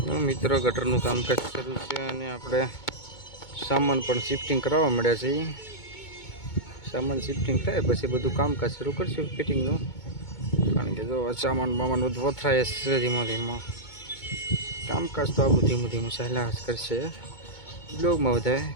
મિત્રો, ગટરનું કામકાજ શરૂ છે અને આપણે સામાન પણ શિફ્ટિંગ કરાવવા મળ્યા છે. સામાન શિફ્ટિંગ થાય પછી બધું કામકાજ શરૂ કરશું ફિટિંગનું, કારણ કે જો સામાન બધું વથરાય છે ધીમો ધીમો. કામકાજ તો આવું ધીમું ચાલ્યા જ કરશે. બ્લોગમાં બધા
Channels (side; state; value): right; late; 2.2 ms